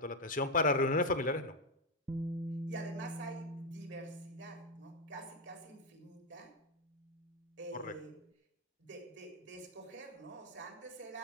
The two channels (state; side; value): normal; both; correlation 0.07